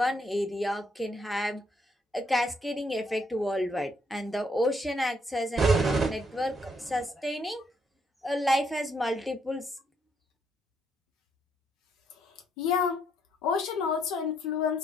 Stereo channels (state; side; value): normal; both; correlation 0.73